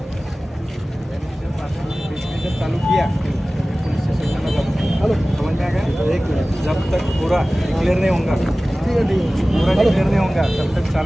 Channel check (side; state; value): both; normal; correlation 0.97